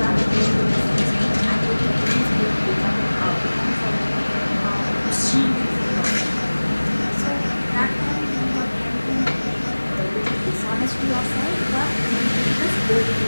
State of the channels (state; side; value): inverted; both; correlation -1.00